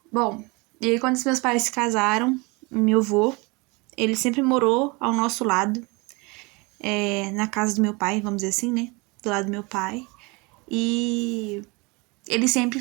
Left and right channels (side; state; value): left; quieter; 27.2 dB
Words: Bom, e aí quando os meus pais se casaram, meu avô, ele sempre morou ao nosso lado, na casa do meu pai, vamos dizer assim, né? Do lado do meu pai. E ele sempre